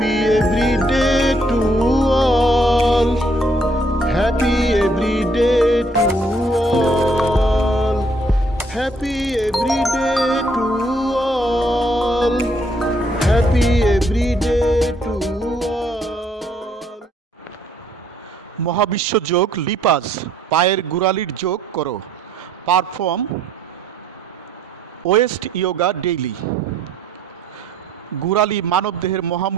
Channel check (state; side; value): normal; both; correlation 0.67